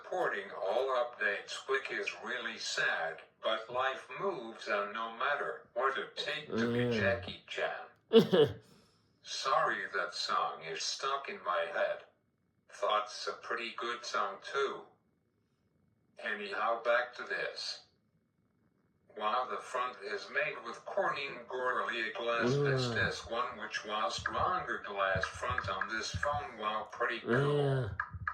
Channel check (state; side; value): identical; both; correlation 1.00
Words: all updates, which is really sad, but life moves on no matter what it takes to be Jackie Chan. Sorry, that song is stuck in my head. Thought's a pretty good song too. Anyhow, back to this. Wow, the front is made with Corning Gorilla Glass Vistas 1, which was stronger glass front on this phone. Wow, pretty cool.